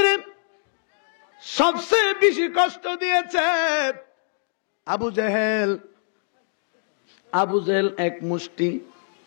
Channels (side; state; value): right; silent; digital silence